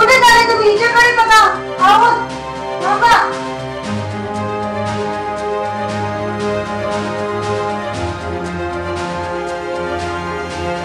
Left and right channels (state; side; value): identical; both; correlation 1.00